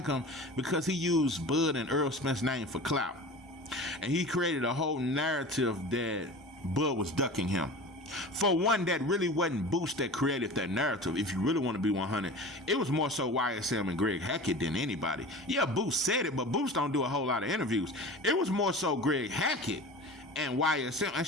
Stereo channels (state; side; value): normal; both; correlation 0.36